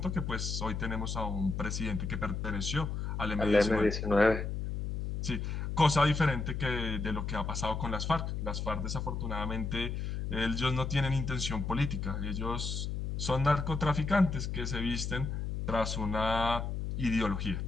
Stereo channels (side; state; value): left; noise; hum, 3 dB below the sound